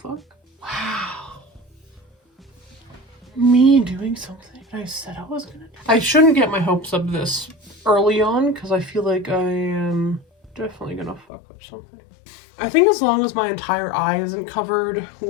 Wow. Me doing something I said I was gonna do. I shouldn't get my hopes up this early on because I feel like I am definitely gonna fuck up something. I think as long as my entire eye isn't covered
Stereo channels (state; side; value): drops out; right; at 11.2 s